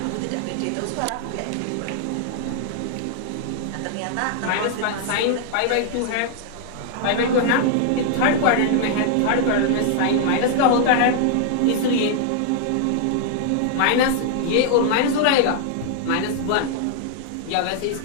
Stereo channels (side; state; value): both; different; correlation 0.00